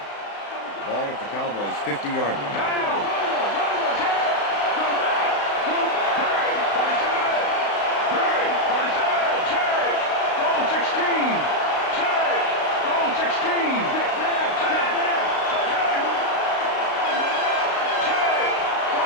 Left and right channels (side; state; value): right; late; 35 ms